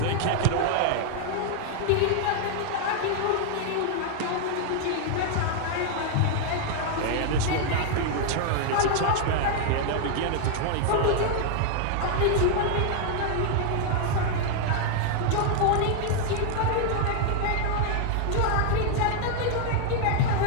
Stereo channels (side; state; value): both; different; correlation 0.00